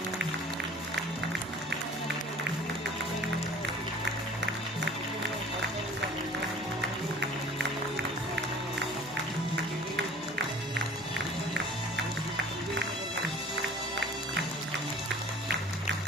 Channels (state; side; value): normal; both; correlation 0.47